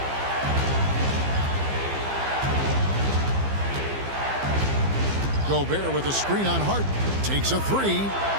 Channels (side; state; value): left; late; 15 ms